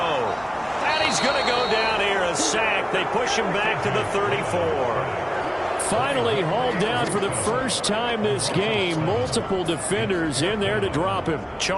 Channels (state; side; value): identical; both; correlation 1.00